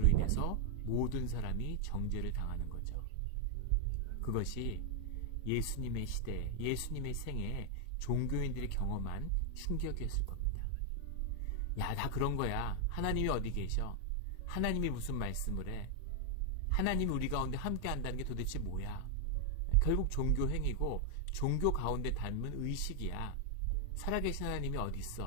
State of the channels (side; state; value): both; different; correlation 0.00